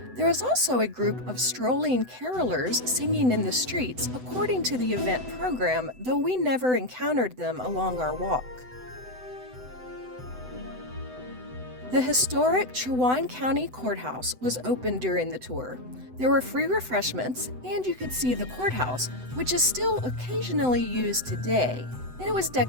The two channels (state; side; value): late; left; 7.9 ms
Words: There was also a group of strolling carolers singing in the streets according to the event program, though we never encountered them along our walk. The historic Chowan County Courthouse was open during the tour. There were free refreshments, and you could see the courthouse, which is still occasionally used today, and it was